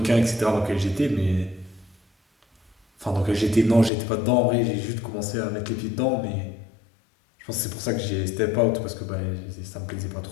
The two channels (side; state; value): right; drops out; at 3.9 s